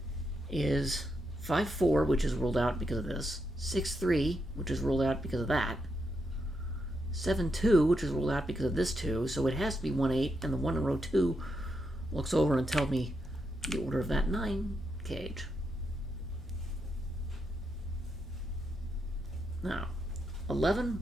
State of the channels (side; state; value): both; normal; correlation 0.82